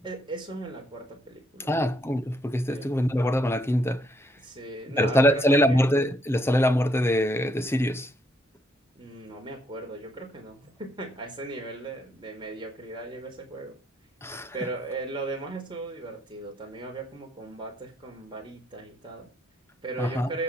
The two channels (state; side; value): normal; both; correlation 0.72